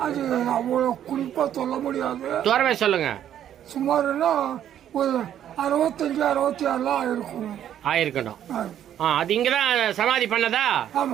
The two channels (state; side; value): quieter; left; 10.5 dB